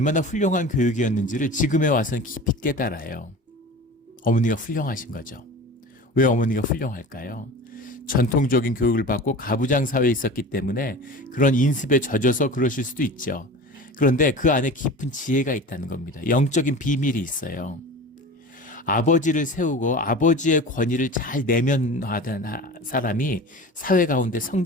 훌륭한 교육이었는지를 지금에 와서는 깊이 깨달아요. 어머니가 훌륭하신 거죠. 왜 어머니가 훌륭할까요? 전통적인 교육을 받고 가부장 사회에 있었기 때문에 그런 인습에 젖어서 그러실 수도 있죠. 그런데 그 안에 깊은 지혜가 있다는 겁니다. 영적인 비밀이 있어요. 아버지를 세우고 아버지의 권위를 잘 내면화하는 사람이 사회 가운데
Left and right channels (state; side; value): normal; both; correlation 0.35